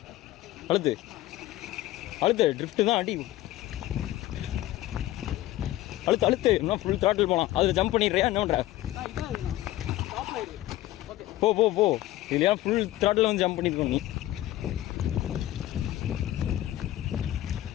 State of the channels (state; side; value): quieter; right; 15.2 dB